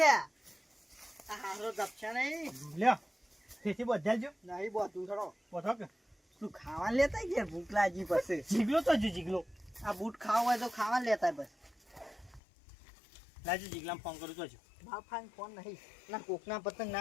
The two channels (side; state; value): right; drops out; at 12.4 s